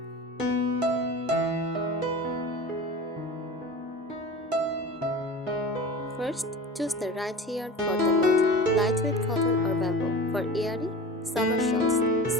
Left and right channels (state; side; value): normal; both; correlation 0.34